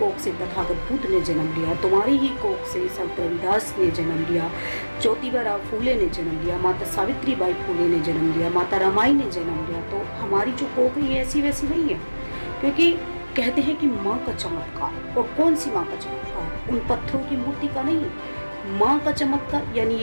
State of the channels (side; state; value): both; inverted; correlation -1.00